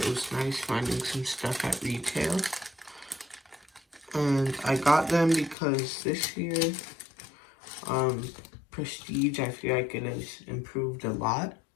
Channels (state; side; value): drops out; right; at 5.6 s